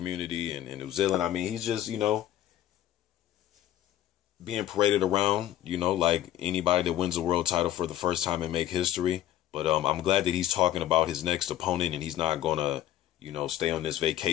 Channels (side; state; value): right; quieter; 12.5 dB